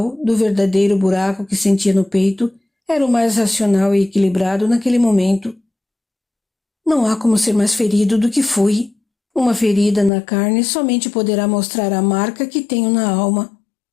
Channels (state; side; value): drops out; right; at 10.1 s